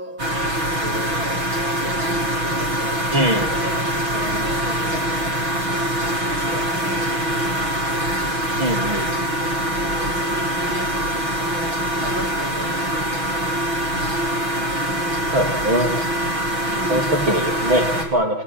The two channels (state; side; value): late; left; 6.1 ms